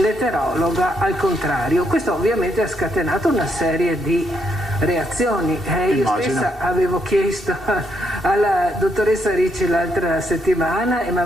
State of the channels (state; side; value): normal; both; correlation 0.76